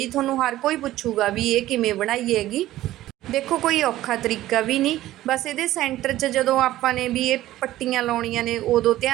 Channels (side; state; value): left; quieter; 14.9 dB